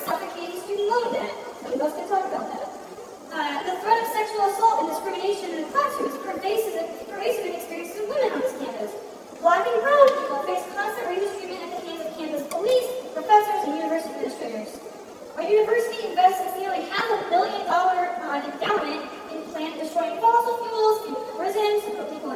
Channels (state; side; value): identical; both; correlation 1.00